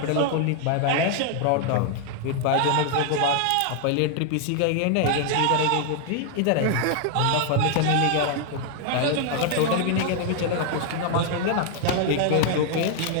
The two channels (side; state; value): both; different; correlation 0.00